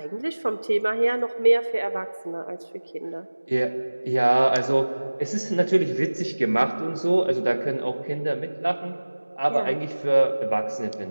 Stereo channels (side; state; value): both; inverted; correlation -1.00